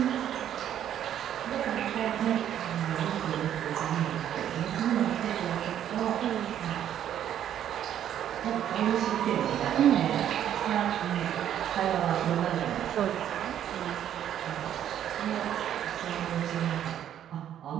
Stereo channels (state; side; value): quieter; left; 10.4 dB